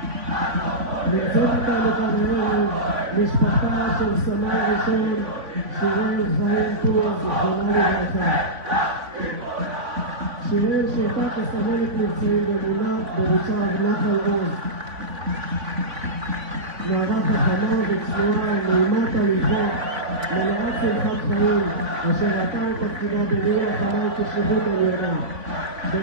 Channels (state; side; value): late; left; 3.5 ms